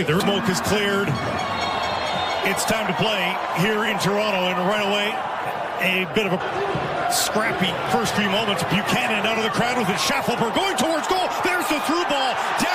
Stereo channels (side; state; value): both; identical; correlation 1.00